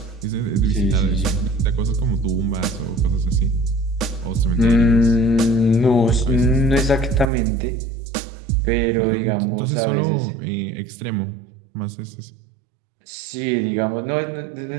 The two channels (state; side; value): drops out; left; at 7.3 s